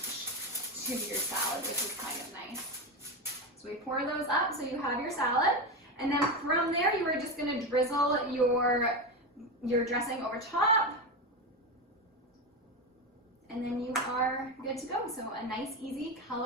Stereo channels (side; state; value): both; normal; correlation 0.16